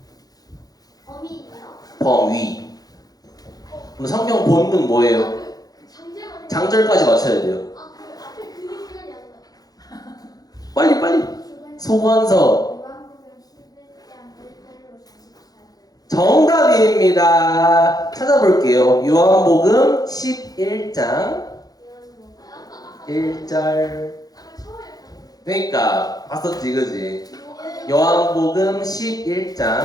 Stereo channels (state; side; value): late; right; 0.18 ms